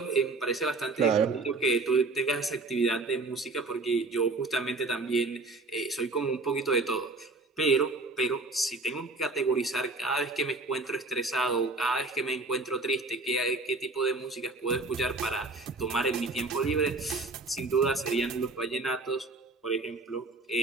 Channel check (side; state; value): left; quieter; 3.3 dB